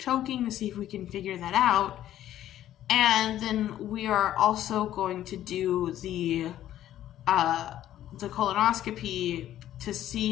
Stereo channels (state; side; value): quieter; right; 12.4 dB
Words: to see if we can figure that out. And then we are also going to do the colonoscopy to